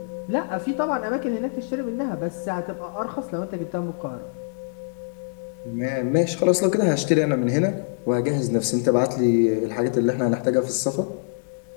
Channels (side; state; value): right; silent; digital silence